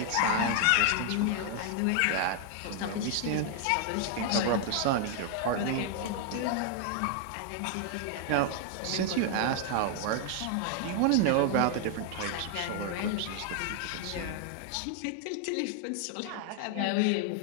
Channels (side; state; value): both; different; correlation 0.00